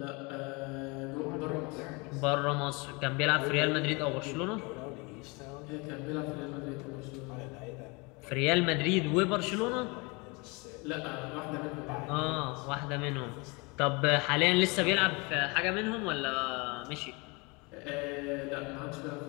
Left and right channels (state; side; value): quieter; right; 28.3 dB